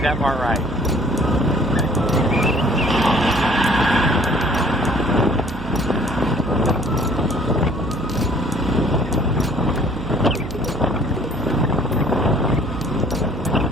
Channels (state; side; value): noise; right; hum, 11 dB below the sound